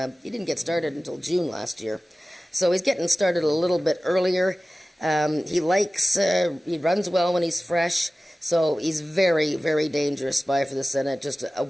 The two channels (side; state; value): both; normal; correlation 0.96